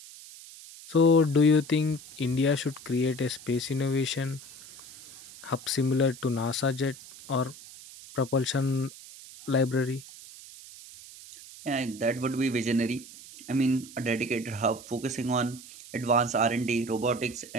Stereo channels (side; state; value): right; noise; hiss, 17 dB below the sound